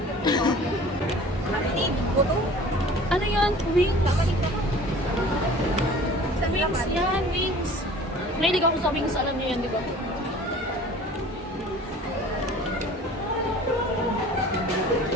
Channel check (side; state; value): both; normal; correlation 0.45